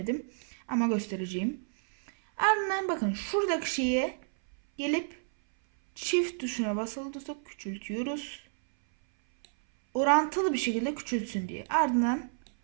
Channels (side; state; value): left; silent; 58 dB below the other